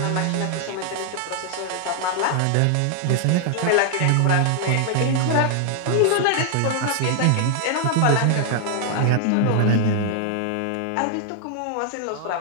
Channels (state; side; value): different; both; correlation 0.00